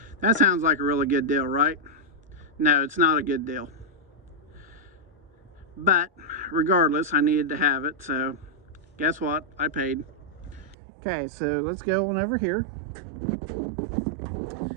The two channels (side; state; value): left; drops out; at 10.8 s